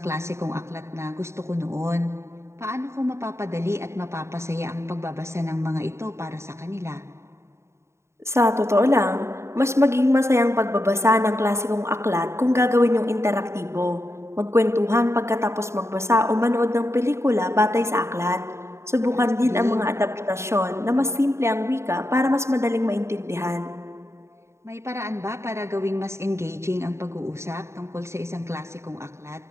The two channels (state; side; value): late; left; 0.13 ms